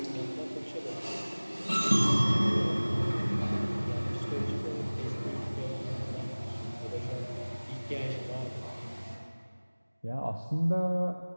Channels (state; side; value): inverted; both; correlation -1.00